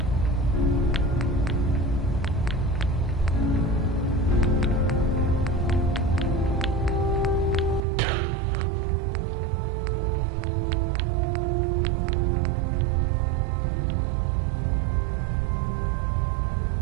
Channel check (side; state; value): left; drops out; at 7.9 s